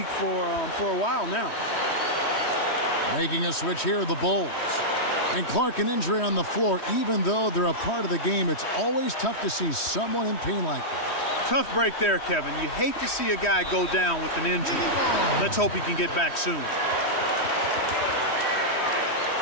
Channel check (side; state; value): right; late; 3.1 ms